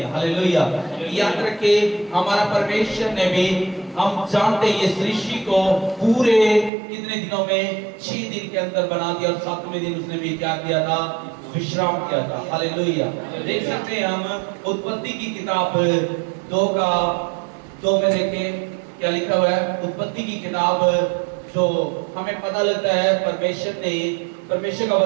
हालेलुया। याद रखिए, हमारा परमेश्वर ने भी, हम जानते हैं, ये सृष्टि को पूरे कितने दिनों में? 6 दिन के अंदर बना दिया और 7वें दिन उसने भी क्या किया था? विश्राम किया था। हालेलुया। देख सकते हैं हम उत्पत्ति की किताब 2 में देखें क्या लिखा हुआ है। उत्पत्ति की किताब जो हमें पता लगता है परमेश्वर का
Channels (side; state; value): left; drops out; at 6.7 s